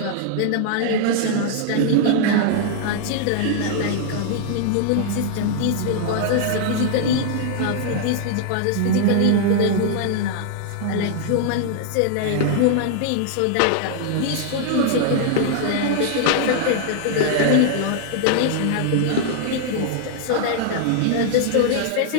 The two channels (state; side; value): different; both; correlation -0.01